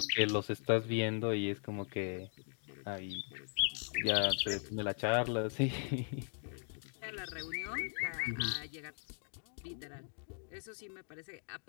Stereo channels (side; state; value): right; silent; 52 dB below the other